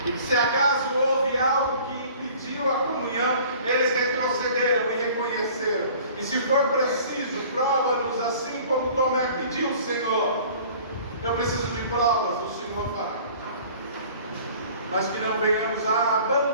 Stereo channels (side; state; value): both; inverted; correlation -0.48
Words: e que se acaso houve algo que impediu a comunhão, eles retrocederam e reconheceram. E se for preciso, prova-nos assim como Tomé pediu, Senhor. Eu preciso de provas, o Senhor fará. Mas que não venhamos a